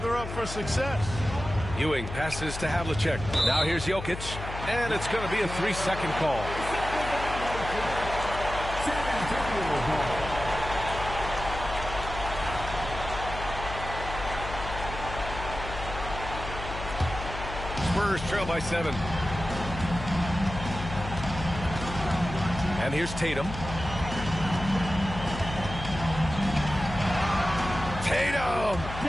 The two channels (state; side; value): noise; left; hum, 8 dB below the sound